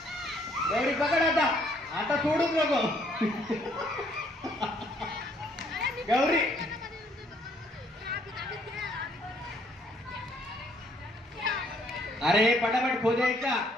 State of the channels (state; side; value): normal; both; correlation 0.66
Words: गौरी पकड आता. आता सोडूच नको. गौरी अरे पटापट खोदे का